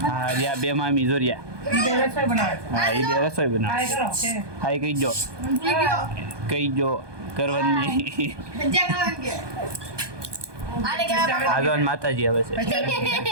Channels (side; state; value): left; late; 1.2 ms